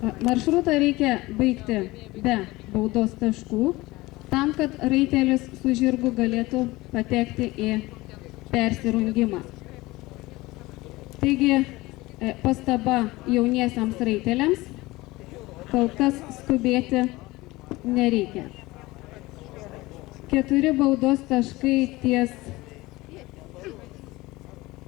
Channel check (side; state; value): right; quieter; 20.3 dB